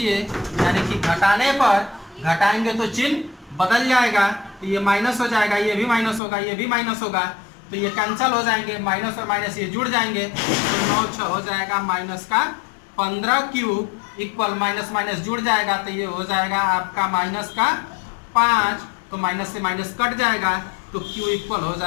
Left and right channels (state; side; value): drops out; right; at 6.2 s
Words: यानी कि घटाने पर घटाएंगे तो चिन्ह बदल जाएगा, तो ये माइनस हो जाएगा, ये भी माइनस होगा, ये भी माइनस होगा, तो ये कैंसिल हो जाएंगे, माइनस और माइनस ये जुड़ जाएंगे, तो 9 6 हो जाएगा माइनस का 15q इक्वल माइनस माइनस जुड़ जाएगा, तो ये हो जाएगा आपका माइनस का 5, तो माइनस से माइनस कट जाएगा, तो q इक्वल हो